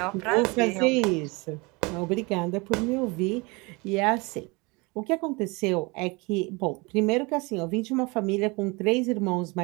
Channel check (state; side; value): quieter; left; 26.9 dB